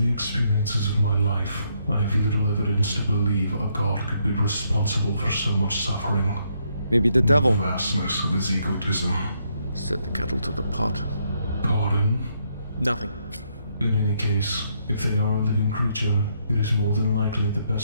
experiences of my life, I have little evidence to believe a god could be responsible for so much suffering. Maybe the The devil. vastness of his egotism. Set the kettle to the pot. Nothing. In any case, if they are a living creature, it is more than likely the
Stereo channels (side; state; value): both; inverted; correlation -0.74